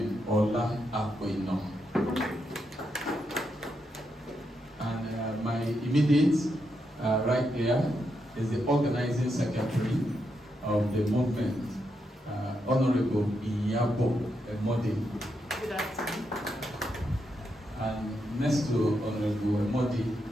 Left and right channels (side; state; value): both; normal; correlation 0.82